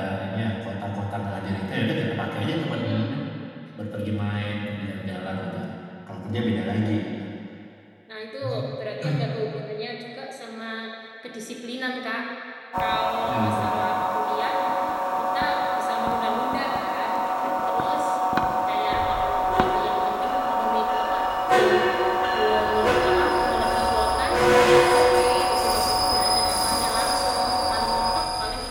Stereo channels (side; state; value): both; identical; correlation 1.00